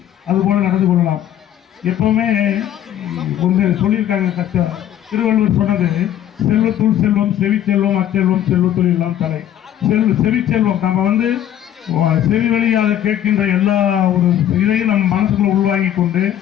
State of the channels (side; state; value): right; quieter; 11.0 dB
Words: அதுபோல நடந்து கொள்ளலாம். எப்பவுமே சொல்லியிருக்காங்க, திருவள்ளுவர் சொன்னது, செல்வத்துள் செல்வம், செவிச்செல்வம், அச்செல்வம், செல்வத்துள் எல்லாம் தலை. செவிச்செல்வம் நம்ம செவி வழியாக கேட்கின்ற எல்லா ஒரு இதையும் நம்ம மனசுக்குள்ள உள்வாங்கி கொண்டு